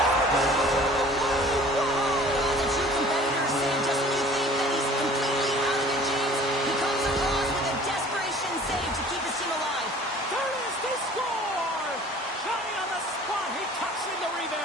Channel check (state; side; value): normal; both; correlation 0.48